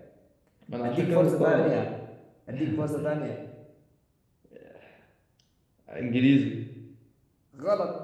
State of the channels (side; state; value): both; identical; correlation 1.00